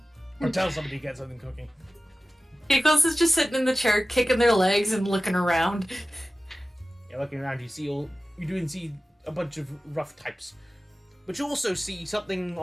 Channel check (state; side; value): normal; both; correlation 0.96